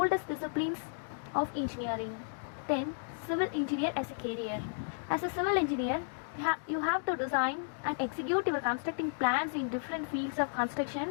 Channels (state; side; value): silent; right; digital silence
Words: disciplines of engineering. Then, civil engineer as a career. As a civil engineer, you have to design and execute your constructing plans in different fields of